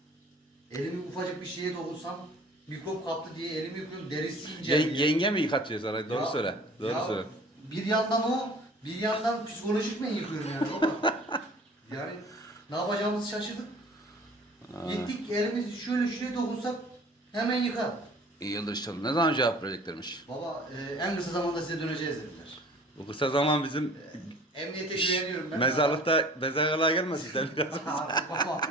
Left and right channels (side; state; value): both; normal; correlation 0.47